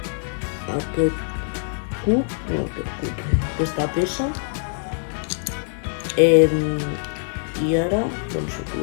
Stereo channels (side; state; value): right; silent; digital silence